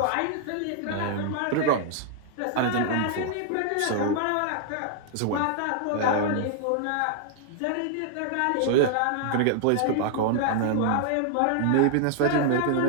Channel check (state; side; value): different; both; correlation 0.00